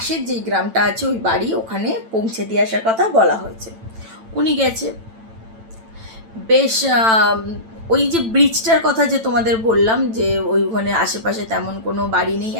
যেই গ্রামটা আছে ওই বাড়ি, ওখানে পৌঁছে দিয়ে আসার কথা বলা হয়েছে। উনি গেছে। বেশ ওই যে ব্রিজটার কথা যে তোমাদের বললাম, যে ওইখানে আশেপাশে তেমন কোনো বাড়ি নেই,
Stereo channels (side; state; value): left; late; 9.0 ms